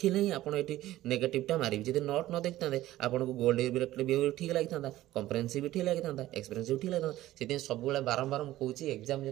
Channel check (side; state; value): left; quieter; 15.2 dB